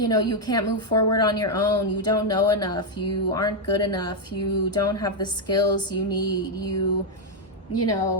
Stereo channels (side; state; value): both; normal; correlation 0.01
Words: know, you can't move forward on your own. You don't know enough. You aren't good enough. You don't have the skills you need. You